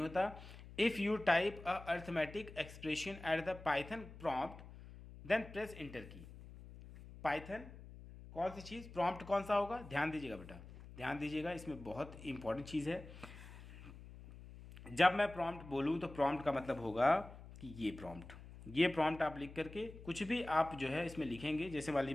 If you type a arithmetic expression at the Python prompt then press enter key. Python कौन सी चीज़, प्रॉम्प्ट कौन सा होगा, ध्यान दीजिएगा बेटा, ध्यान दीजिएगा, इसमें बहुत इंपॉर्टेंट चीज़ है। जब मैं प्रॉम्प्ट बोलूँ तो प्रॉम्प्ट का मतलब होगा कि ये प्रॉम्प्ट आप लिख करके कुछ भी आप जो है इसमें लिखेंगे। जैसे वाली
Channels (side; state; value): left; noise; hum, 15 dB below the sound